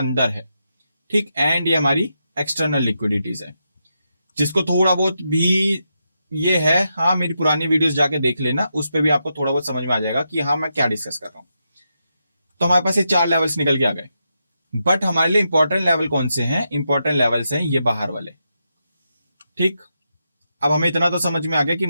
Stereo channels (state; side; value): inverted; both; correlation -0.85